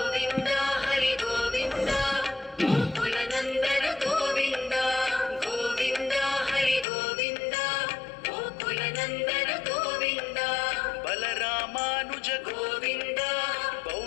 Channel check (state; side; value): drops out; right; at 6.9 s